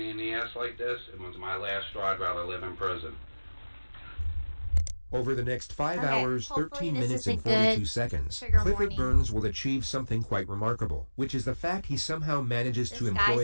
in the ass like this, it was my last straw. I'd rather live in prison. Over the next 5 hours, 13 minutes and 42 seconds, Clifford warning. Burns will achieve something quite remarkable, which is the fact he somehow manages to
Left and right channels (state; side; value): inverted; both; correlation -1.00